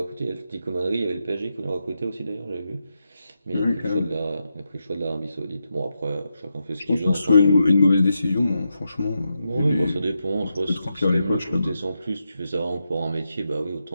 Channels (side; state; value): both; inverted; correlation -0.86